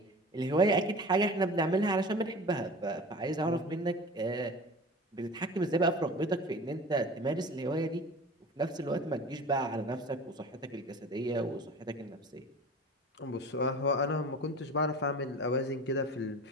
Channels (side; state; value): both; normal; correlation 0.38